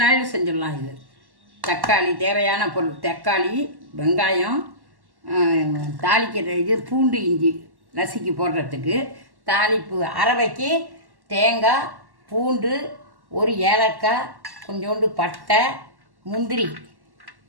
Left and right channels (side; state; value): left; late; 1.1 ms